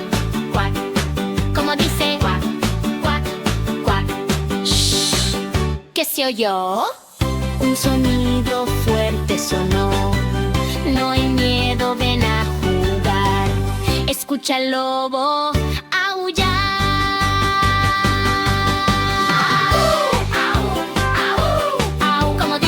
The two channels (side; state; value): both; identical; correlation 1.00